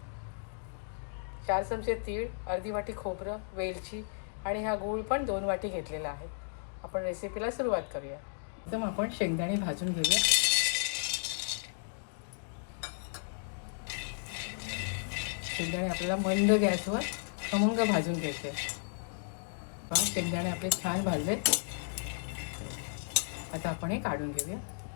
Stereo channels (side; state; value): right; silent; digital silence